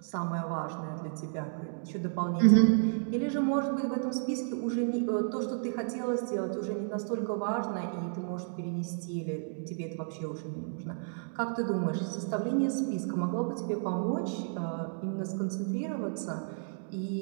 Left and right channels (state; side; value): silent; left; digital silence